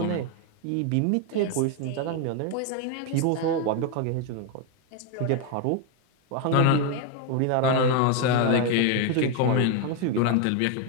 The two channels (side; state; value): both; different; correlation 0.01